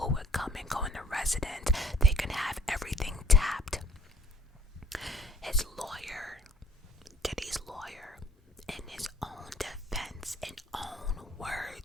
would come and go in the residence. They can have everything tapped. His lawyer, Diddy's lawyer, in his own defense and own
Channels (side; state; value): both; normal; correlation 0.58